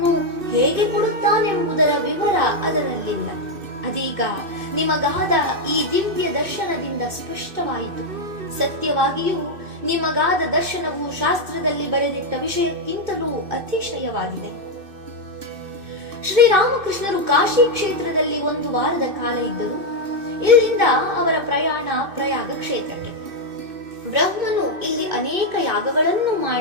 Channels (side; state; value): left; late; 2.6 ms